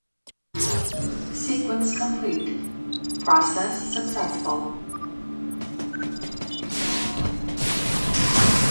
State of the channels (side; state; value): both; inverted; correlation -1.00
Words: Sequence complete. Process successful.